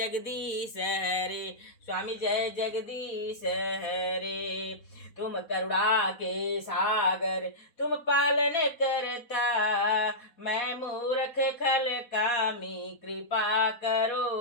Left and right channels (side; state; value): right; late; 4.1 ms